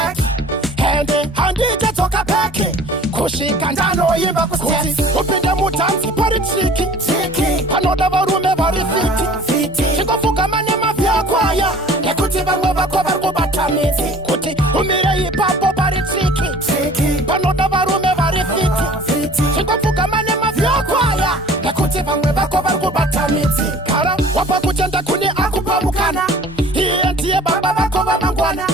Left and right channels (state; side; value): normal; both; correlation 0.47